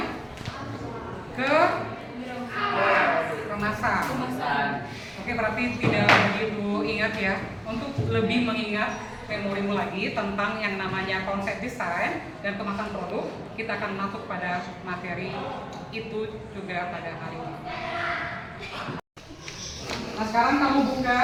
kemasan. Oke, berarti tidak begitu ingat ya. Untuk lebih mengingat memorimu lagi tentang yang namanya konsep desain dan kemasan produk, kita akan masuk pada materi itu juga pada hari ini. Nah, sekarang kamu buka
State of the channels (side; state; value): both; identical; correlation 1.00